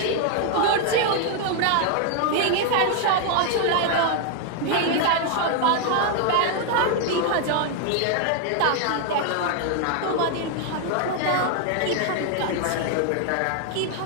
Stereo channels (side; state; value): both; different; correlation 0.00